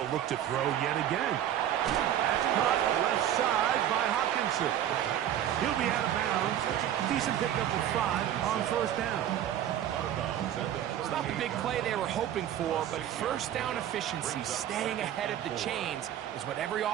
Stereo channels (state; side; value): quieter; left; 11.1 dB